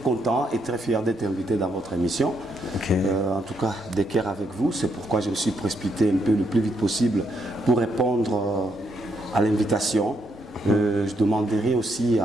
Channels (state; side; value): normal; both; correlation 0.76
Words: et très fier d'être invité dans votre émission. Okay. En tout cas, d'équerre avec vous. C'est pourquoi je me suis précipité un peu le plus vite possible pour répondre à l'invitation. Je demanderai aussi